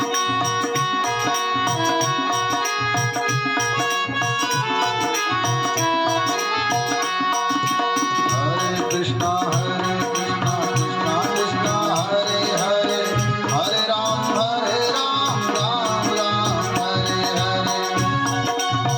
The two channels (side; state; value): both; identical; correlation 1.00